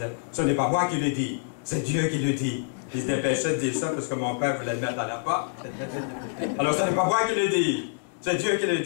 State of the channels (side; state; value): right; silent; digital silence